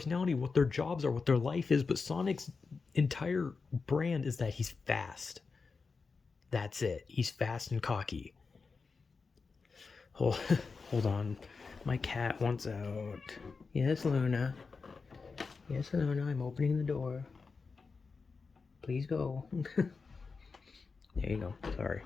what their jobs are, what their life is. But Sonic's entire brand is that he's fast. That's it. He's fast and cocky. Hold, hold on. My cat wants out. Yes, Luna. Yes, Alona, I'm opening the door. Please go. There you go. Sorry,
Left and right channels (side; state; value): right; quieter; 4.6 dB